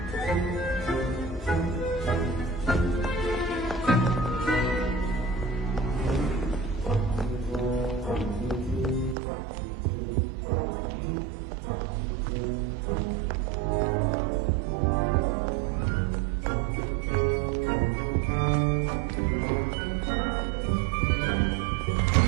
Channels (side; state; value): left; drops out; at 9.2 s